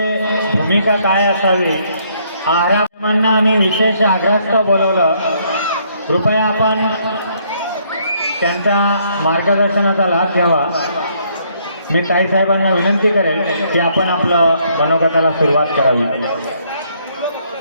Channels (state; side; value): inverted; both; correlation -0.68